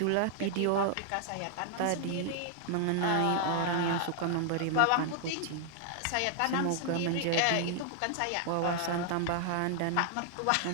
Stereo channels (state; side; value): different; both; correlation 0.00